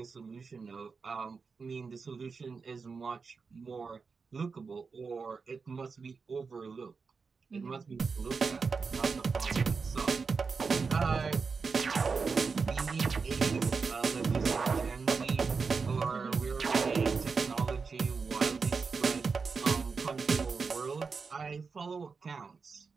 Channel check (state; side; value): quieter; left; 5.0 dB